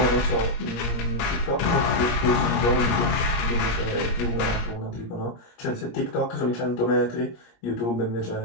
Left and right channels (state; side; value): late; right; 17 ms